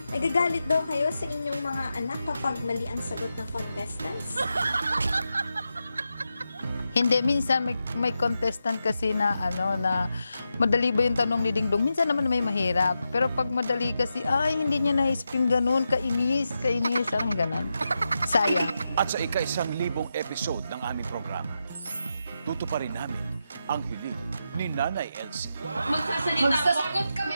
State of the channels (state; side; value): inverted; both; correlation -0.88